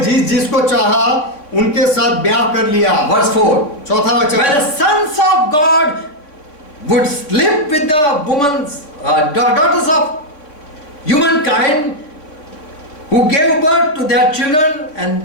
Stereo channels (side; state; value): right; late; 3.5 ms